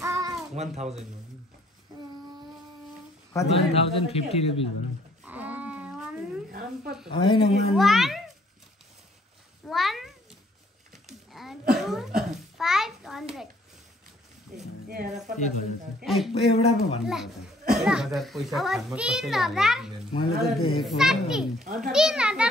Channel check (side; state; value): both; normal; correlation 0.62